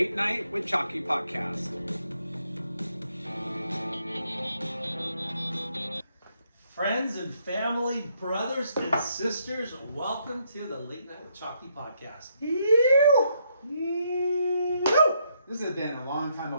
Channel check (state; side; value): inverted; both; correlation -0.74